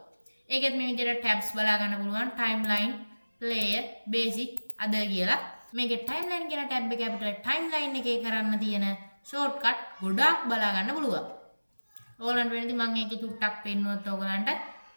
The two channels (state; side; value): inverted; both; correlation -1.00